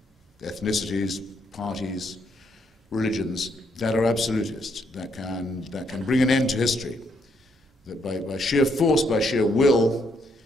ethnicities, parties, religions that are absolutist, that can bring an end to history, that by sheer force, by sheer will,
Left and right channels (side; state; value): both; normal; correlation 0.74